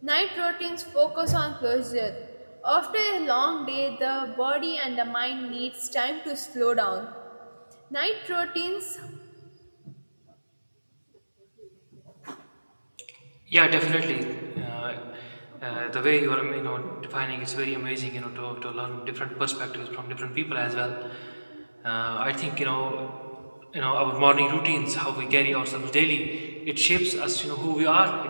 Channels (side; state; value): both; inverted; correlation -1.00